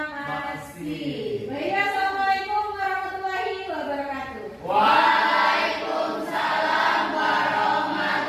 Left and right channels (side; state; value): both; identical; correlation 1.00